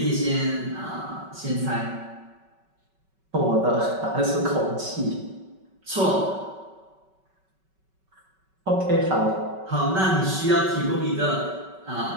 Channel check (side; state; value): left; late; 5.3 ms